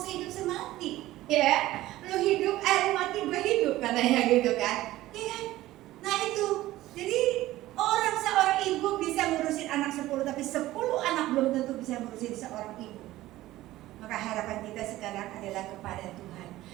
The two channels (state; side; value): quieter; left; 16.1 dB